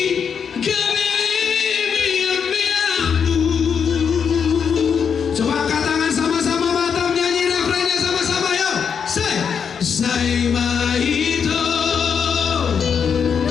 Coba angkat tangan sama-sama Batam, nyanyi refrennya sama-sama yuk. Sai mahito,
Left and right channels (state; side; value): quieter; right; 6.9 dB